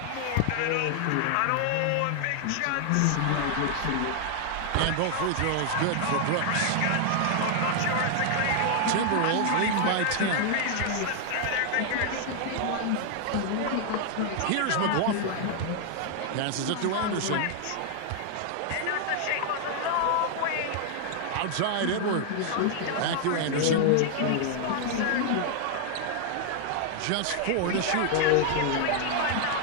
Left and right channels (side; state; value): both; different; correlation 0.00